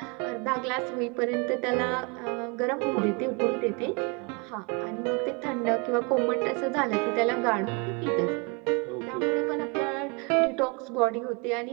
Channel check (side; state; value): left; quieter; 31.7 dB